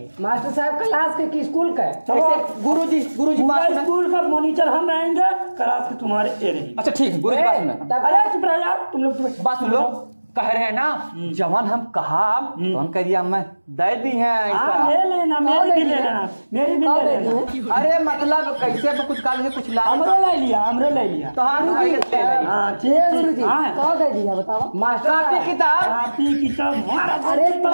मास्टर साहब क्लास के की स्कूल का है। चलो गुरुजी पूरा बात सुनो। स्कूल का मॉनिटर हम रहेंगे क्लास के तुम्हारे ये रहेंगे। अच्छा ठीक है गुरुजी बात सुनो। तब अरे चुप रहो यार तुम लोग बात सुन लो कह रहे हैं ना जवान हम कहा तो हम कह दिया मैं दे दी है हाँ ऐसा। ले लेना मेरी भी ले लेना मेरी भी ले लेना। अरे मतलब कैसे तो कुछ काल में कुछ ला हमरे ले लिया हमरे ले लिया। तो हाँ ले लेंगे। हाँ ठीक ठीक हाँ कौन दे दिया बताओ? मास्टर कॉपी साहब किताब कापी किताब हमारा अरे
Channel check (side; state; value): both; inverted; correlation -1.00